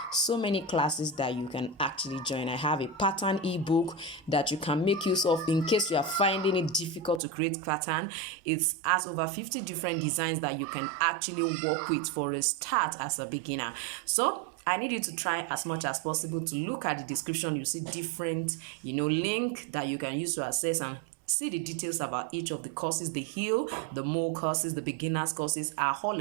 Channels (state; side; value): drops out; left; at 7.2 s